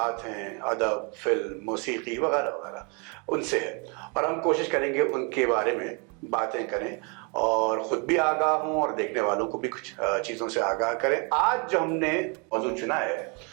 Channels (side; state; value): left; quieter; 33.5 dB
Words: हैं, अदब, फिल्म, मौसीकी वगैरह वगैरह, उनसे है और हम कोशिश करेंगे उनके बारे में बातें करें और ख़ुद भी आगाह हों और देखने वालों को भी कुछ चीज़ों से आगाह करें। आज जो हमने मौजूद चुना है